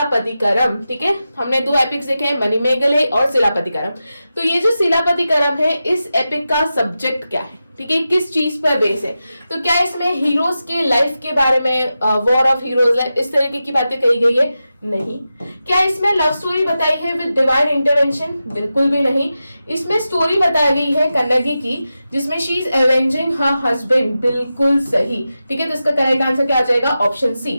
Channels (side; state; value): both; inverted; correlation -0.92